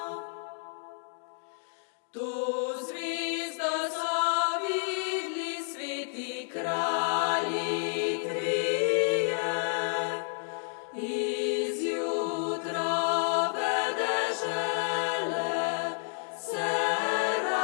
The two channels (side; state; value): right; silent; digital silence